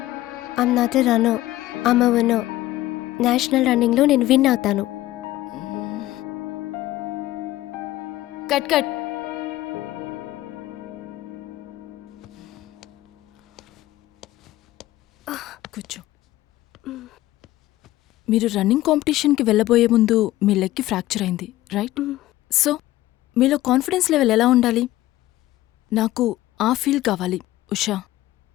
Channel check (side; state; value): right; quieter; 15.9 dB